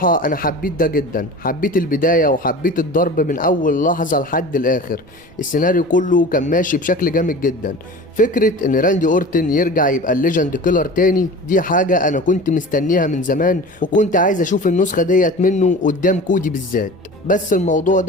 انا حبيت ده جدا. حبيت البداية وحبيت الضرب من اول لحظة لحد الاخر. السيناريو كله كان ماشي بشكل جامد جدا. فكرة ان راندي اورتن يرجع يبقى الليجند كيلر تاني دي حاجة انا كنت مستنيها من زمان، وكنت عايز اشوف النسخة ديت منه قدام كودي بالذات. بس الموضوع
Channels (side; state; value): right; noise; rumble, 27 dB below the sound